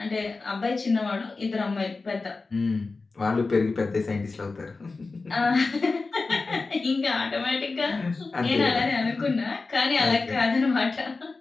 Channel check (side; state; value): right; quieter; 3.9 dB